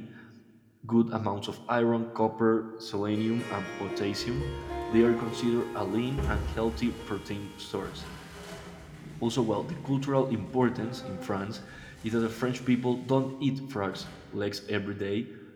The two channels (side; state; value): both; identical; correlation 1.00